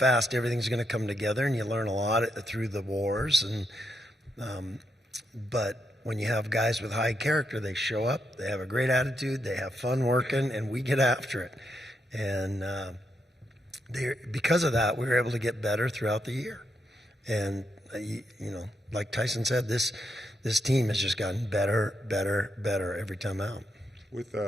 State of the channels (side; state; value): both; normal; correlation 0.81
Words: everything's going to come together, and you learn a lot through the wars. And but when you have guys with high character, they show up, they have a great attitude, they have fun working, and we get after it. And because of that, we were able to get better throughout the year. And like Tyson said, this team has just gotten better every time out. With